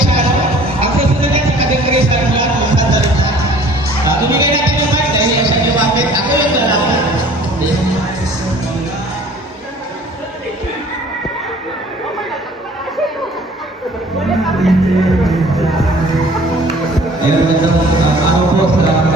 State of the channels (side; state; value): both; normal; correlation 0.51